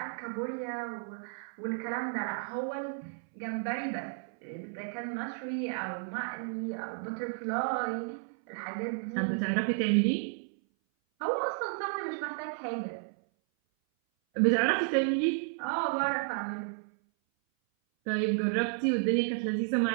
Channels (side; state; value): left; silent; 56 dB below the other